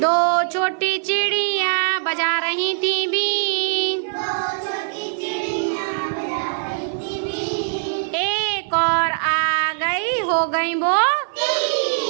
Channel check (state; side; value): silent; left; 65 dB below the other